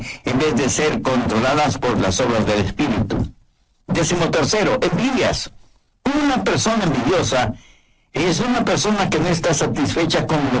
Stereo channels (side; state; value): both; identical; correlation 1.00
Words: en vez de ser controladas por las obras del Espíritu. Décimo tercero, envidias. Una persona envidiosa es una persona que no está satisfecha con